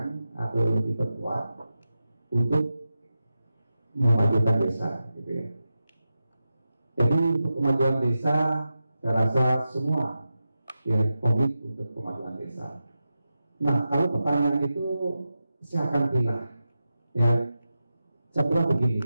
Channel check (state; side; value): inverted; both; correlation -0.91